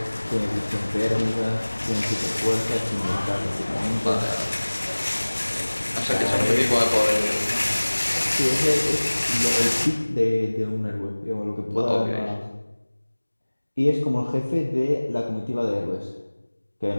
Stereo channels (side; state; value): both; inverted; correlation -1.00